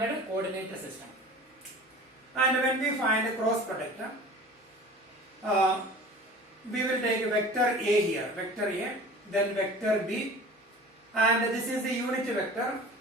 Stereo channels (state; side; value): normal; both; correlation 0.41